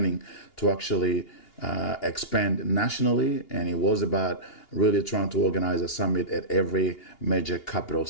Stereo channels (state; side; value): late; right; 2.8 ms